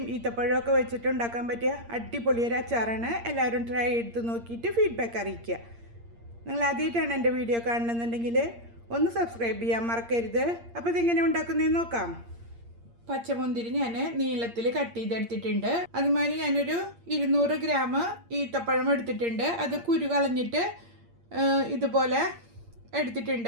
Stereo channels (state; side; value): late; left; 8.6 ms